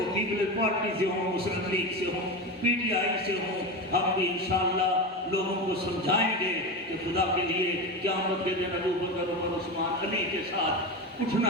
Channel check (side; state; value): both; normal; correlation 0.21